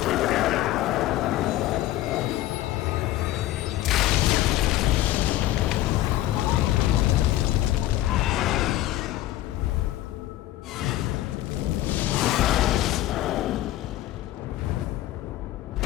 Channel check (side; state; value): right; quieter; 14.9 dB